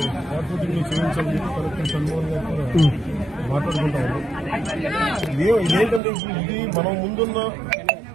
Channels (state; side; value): drops out; left; at 6.0 s